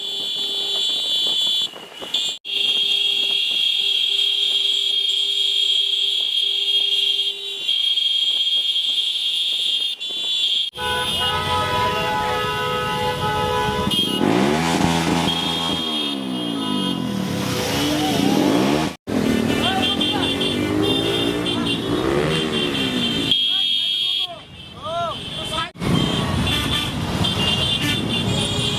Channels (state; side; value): identical; both; correlation 1.00